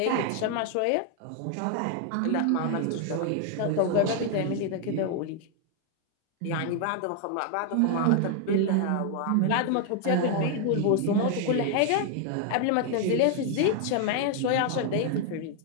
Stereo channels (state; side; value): different; both; correlation 0.00